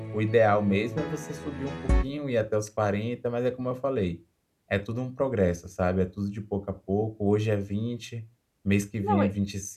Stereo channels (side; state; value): both; identical; correlation 1.00